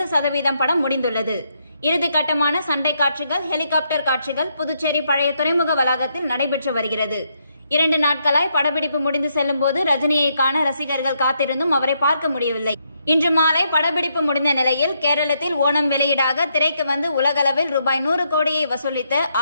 படம் முடிந்துள்ளது. இறுதிக்கட்டமான சண்டை காட்சிகள், ஹெலிகாப்டர் காட்சிகள் புதுச்சேரி பழைய துறைமுக வளாகத்தில் நடைபெற்று வருகிறது. 2 நாட்களாய் படப்பிடிப்பு முடிந்து செல்லும் போது ரஜினியை காண ரசிகர்கள் காத்திருந்தும் அவரை பார்க்க முடியவில்லை. இன்று மாலை படப்பிடிப்பு முடிந்த நிலையில் கேரளத்தில் ஓணம் வெளியீடாக திரைக்கு வந்து உலகளவில் ரூபாய் 100 கோடியை வசூலித்த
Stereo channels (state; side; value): inverted; both; correlation -0.77